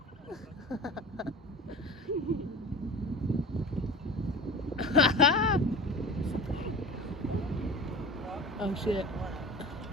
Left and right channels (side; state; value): both; normal; correlation 0.35